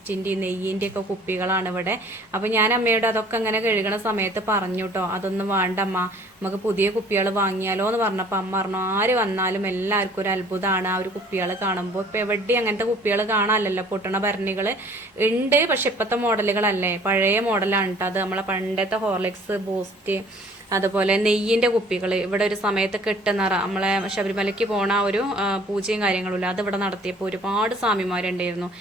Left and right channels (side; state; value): both; normal; correlation 0.53